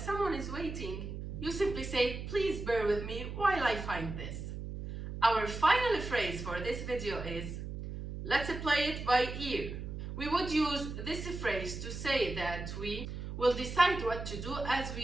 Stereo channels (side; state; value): right; noise; hum, 7 dB below the sound